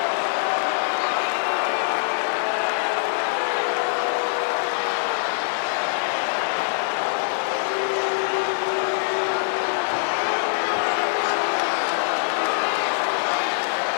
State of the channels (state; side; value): silent; right; digital silence